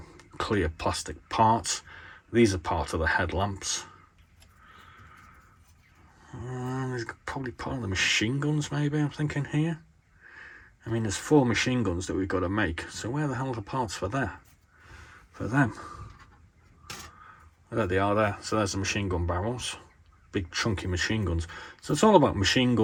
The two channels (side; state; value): both; identical; correlation 1.00